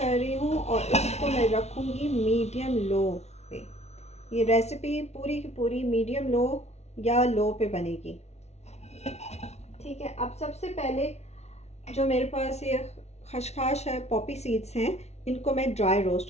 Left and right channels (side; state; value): right; late; 0.31 ms